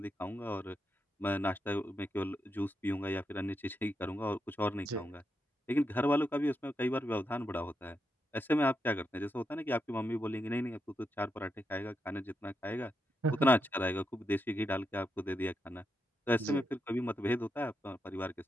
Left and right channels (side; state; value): both; normal; correlation 0.84